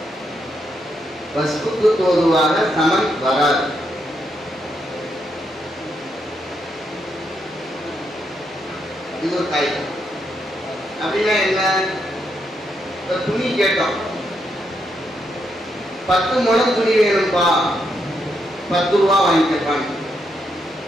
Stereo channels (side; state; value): both; normal; correlation 0.79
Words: வஸ்துக்கு தோதுவாக சமன் வராது. இது ஒரு காய்தான். அப்படின்னா என்ன? துணி கேட்டோம். 10 முழம் துணி வேணும்பா, 10 ரூபா வாங்கிப்பாங்க.